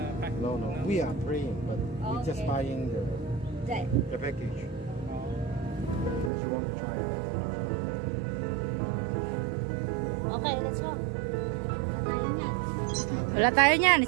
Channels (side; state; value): left; drops out; at 6.3 s